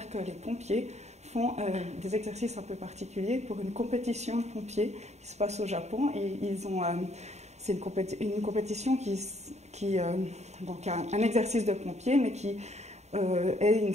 que les pompiers font des exercices un peu particuliers pour une compétition de pompiers qui se passe au Japon. Et c'est une compétition qui a un exercice de pompier, mais qui est une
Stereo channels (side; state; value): left; late; 0.32 ms